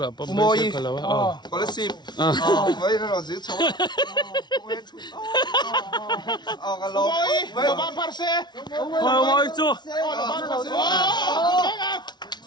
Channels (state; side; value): late; right; 0.20 ms